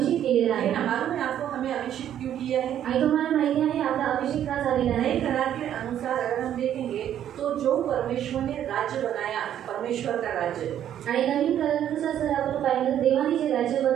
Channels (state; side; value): quieter; left; 10.5 dB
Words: केलेला आहे लेकिन मालूम है आपको हमें अभिषेक क्यों किया है? आणि तुम्हाला माहिती आहे आपला अभिषेक का झालेला नए आहे? करार के अनुसार अगर हम देखेंगे तो जो परमेश्वर ने राज्य बनाया, परमेश्वर का राज्य, आणि नवीन करारानुसार जर आपण पाहिलं देवाने जे राज्य